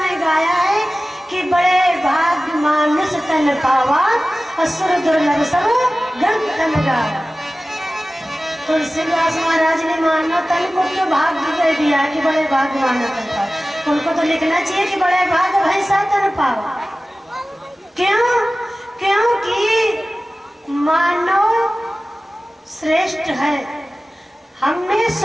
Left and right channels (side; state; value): both; normal; correlation 0.97